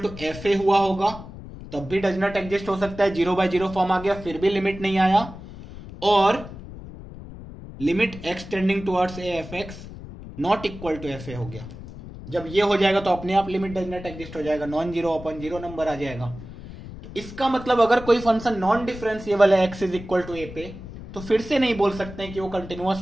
F a हुआ होगा, तब भी डज नॉट एग्जिस्ट हो सकता है, 0/0 फॉर्म आ गया फिर भी लिमिट नहीं आया, और limit x tending towards A F x not equal to F a हो गया। जब ये हो जाएगा तो अपने आप लिमिट डज नॉट एग्जिस्ट हो जाएगा, non zero upon zero number आ जाएगा। तो इसका मतलब अगर कोई फंक्शन नॉन डिफरेंशिएबल है x इज इक्वल टू ए पे, तो फिर से नहीं बोल सकते हैं कि वो कंटिन्यूअस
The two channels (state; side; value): noise; left; rumble, 13 dB below the sound